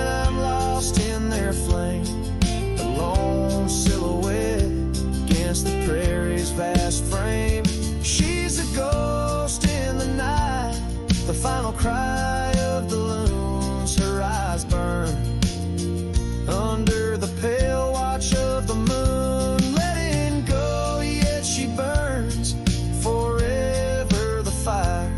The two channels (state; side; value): identical; both; correlation 1.00